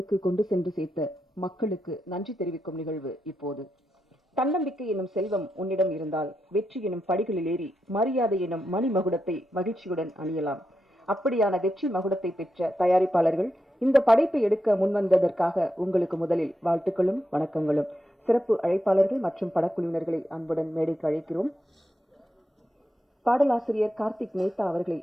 கொண்டு சென்று சேர்த்த மக்களுக்கு நன்றி தெரிவிக்கும் நிகழ்வு இப்போது. தன்னம்பிக்கை எனும் செல்வம் உன்னிடம் இருந்தால் வெற்றி எனும் படிகளில் ஏறி மரியாதை எனும் மணிமகுடத்தை மகிழ்ச்சியுடன் அணியலாம். அப்படியான வெற்றி மகுடத்தை பெற்ற தயாரிப்பாளர்கள் இந்த படைப்பை எடுக்க முன்வந்ததற்காக உங்களுக்கு முதலில் வாழ்த்துக்களும் வணக்கங்களும். சிறப்பு அழைப்பாளர்கள் மற்றும் படக்குழுவினர்களை அன்புடன் மேடைக்கு அழைக்கிறோம். பாடலாசிரியர் கார்த்திக் மேத்தா அவர்களை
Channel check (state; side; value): normal; both; correlation 0.86